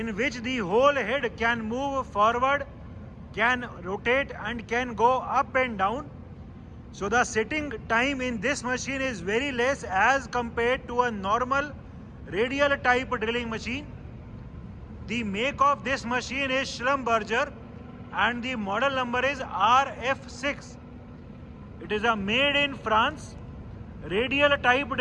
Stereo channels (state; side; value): identical; both; correlation 1.00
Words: which the whole head can move forward, can rotate and can go up and down. So the setting time in this machine is very less as compared to a normal radial type drilling machine. The make of this machine is Schlumberger and the model number is RF6. It is a made in France radial type